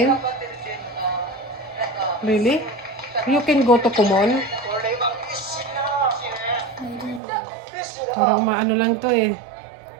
Really? You can go to Kumon? Parang maano lang to eh.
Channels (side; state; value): left; drops out; at 7.2 s